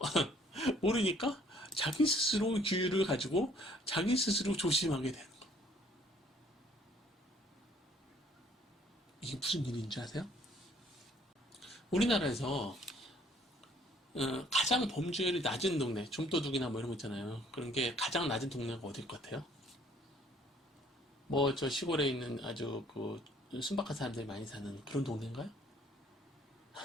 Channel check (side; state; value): both; normal; correlation 0.60